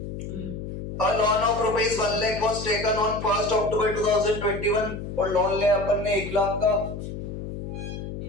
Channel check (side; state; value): left; noise; hum, 8 dB below the sound